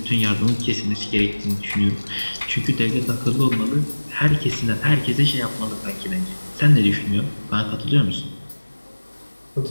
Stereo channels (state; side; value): inverted; both; correlation -1.00